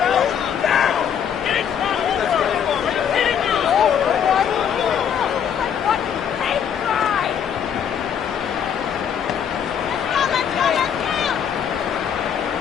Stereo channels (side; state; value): right; quieter; 8.3 dB